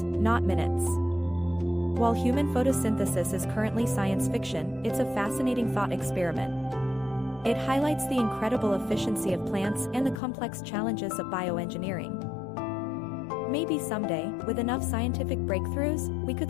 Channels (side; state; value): right; drops out; at 10.2 s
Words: not minutes. While human photosynthesis is currently science fiction, it's a fascinating thought experiment. It highlights the incredible efficiency of plants and the complex challenges of bioengineering. Maybe someday, with enough scientific breakthroughs, we